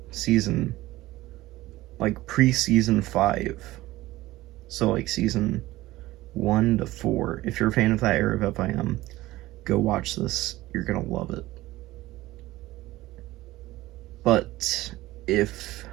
pre-season 5, so, season 1 to 4, if you're a fan of that era of FIM, go watch this. You're gonna love it. But if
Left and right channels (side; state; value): left; quieter; 17.5 dB